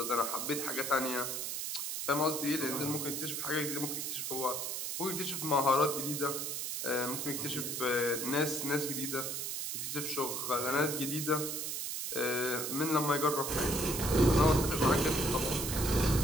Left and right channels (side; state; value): right; noise; hiss, 3 dB below the sound